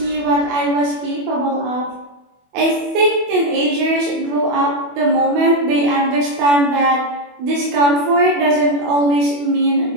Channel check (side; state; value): left; late; 24 ms